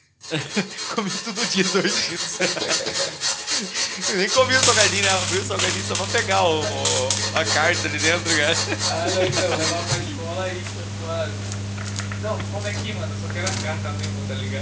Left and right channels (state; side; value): identical; both; correlation 1.00